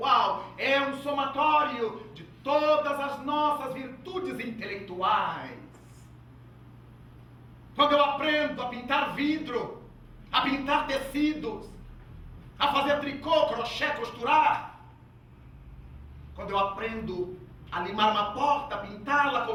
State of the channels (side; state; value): both; identical; correlation 1.00